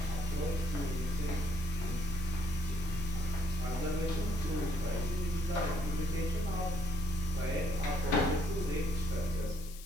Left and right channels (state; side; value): noise; left; hiss, 16 dB below the sound